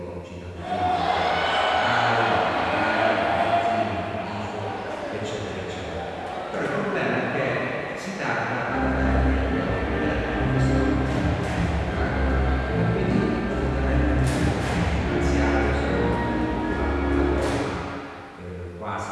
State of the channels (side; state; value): both; identical; correlation 1.00